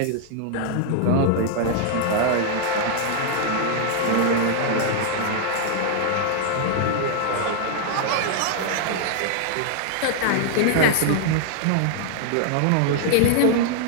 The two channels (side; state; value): both; different; correlation 0.00